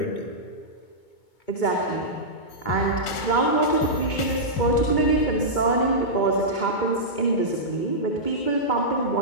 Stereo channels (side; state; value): right; late; 2.2 ms